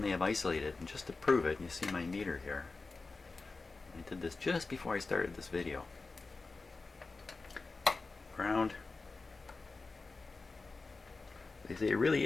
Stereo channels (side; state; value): right; quieter; 3.8 dB